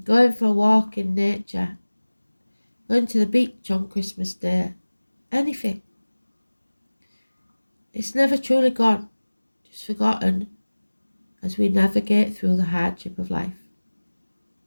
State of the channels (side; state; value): both; inverted; correlation -1.00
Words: going for a walk in nature, going to the beach on Christmas Day, anything. It's never truly gone, just forgotten as we navigate through the hardship of life.